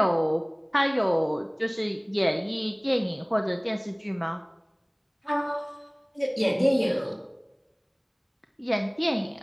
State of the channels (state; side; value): identical; both; correlation 1.00